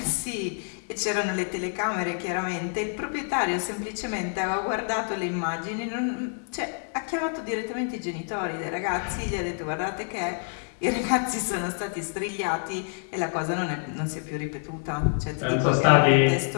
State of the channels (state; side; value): silent; right; 60 dB below the other